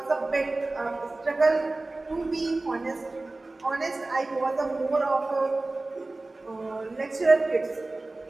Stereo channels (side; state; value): left; quieter; 3.1 dB